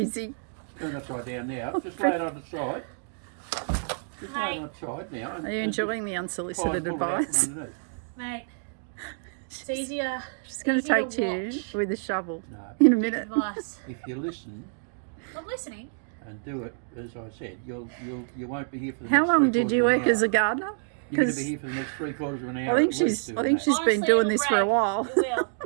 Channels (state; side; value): silent; left; digital silence